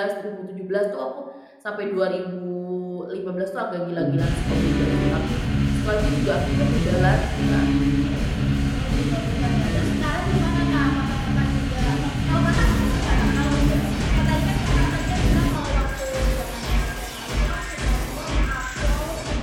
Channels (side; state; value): both; identical; correlation 1.00